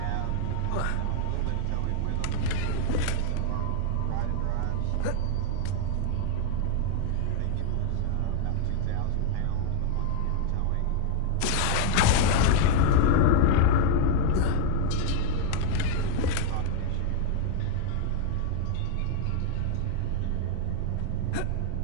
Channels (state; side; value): different; both; correlation 0.00